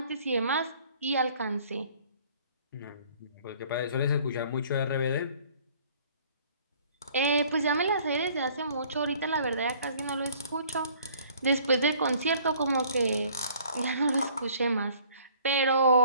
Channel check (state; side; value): inverted; both; correlation -0.55